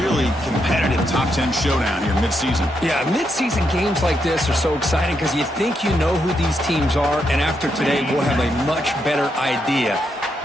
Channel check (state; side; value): normal; both; correlation 0.81